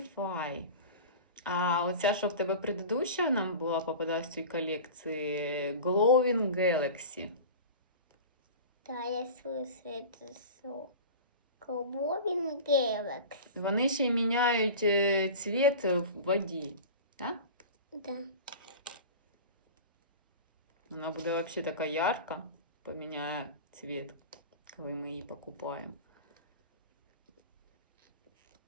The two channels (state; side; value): inverted; both; correlation -0.34